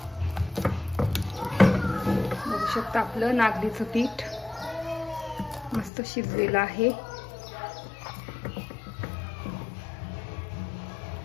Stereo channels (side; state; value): right; drops out; at 5.9 s